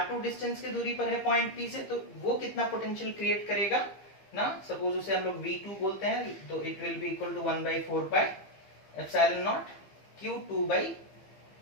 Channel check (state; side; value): late; right; 15 ms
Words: डिस्टेंस की दूरी पर है पॉइंट P से, तो वो कितना पोटेंशियल क्रिएट करेगा ना, सपोज उसे हम लोग V2 बोलते हैं, तो it will be equal to 1/4 pi epsilon nought Q2 by